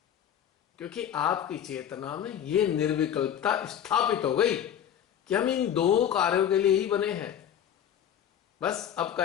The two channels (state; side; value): quieter; right; 9.6 dB